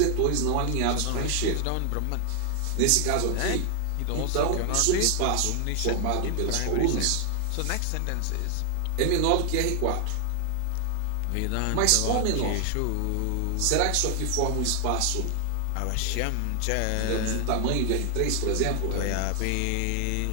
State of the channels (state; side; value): different; both; correlation 0.00